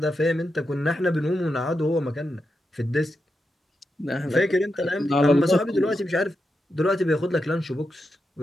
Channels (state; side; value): normal; both; correlation 0.87